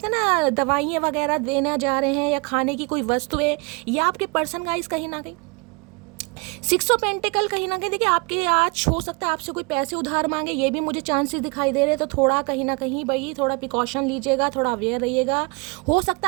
हैं ना दवाइयाँ वगैरह देना जा रहे हैं, या खाने की कोई वस्तुएं, या आपके पर्सन गाइस कहीं ना कहीं 6 ऑफ पेंटिकल कहीं ना कहीं देखिए आपके आज हो सकता है आपसे कोई पैसे उधार मांगे, ये भी मुझे चांसेस दिखाई दे रहे हैं। तो थोड़ा कहीं ना कहीं भाई थोड़ा प्रिकॉशन लीजिएगा, थोड़ा अवेयर रहिएगा। हो सकता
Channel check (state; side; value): quieter; left; 30.0 dB